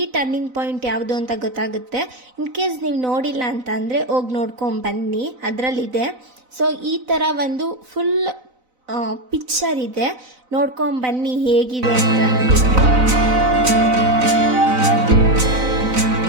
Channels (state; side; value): late; left; 4.0 ms